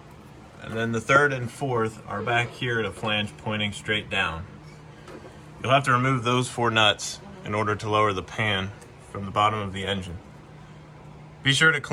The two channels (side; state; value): both; identical; correlation 1.00